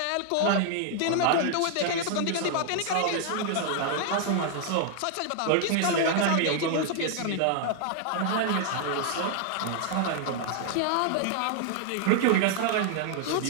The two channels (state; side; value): different; both; correlation 0.00